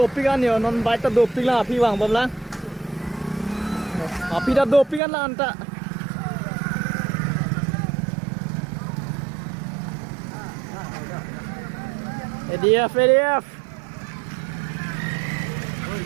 yo non bike ta doping lah api bang bamlang. Api dah dopingan lah anta. ADF.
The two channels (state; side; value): drops out; left; at 5.0 s